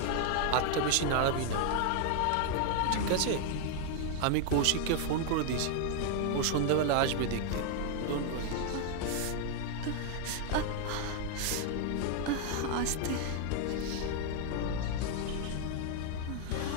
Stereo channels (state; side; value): different; both; correlation 0.00